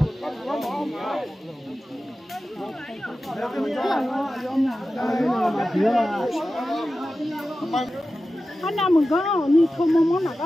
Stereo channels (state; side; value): normal; both; correlation 0.94